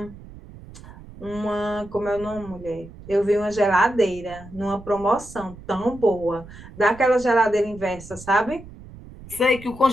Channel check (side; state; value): right; noise; rumble, 17 dB below the sound